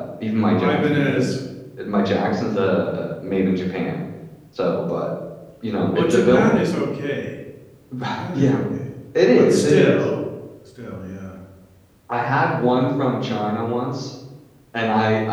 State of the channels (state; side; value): identical; both; correlation 1.00